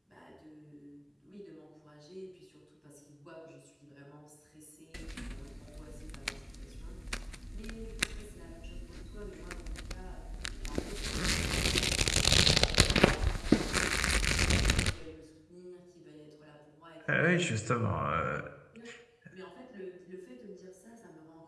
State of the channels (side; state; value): both; identical; correlation 1.00